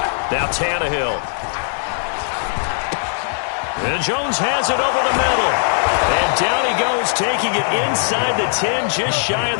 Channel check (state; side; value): silent; right; digital silence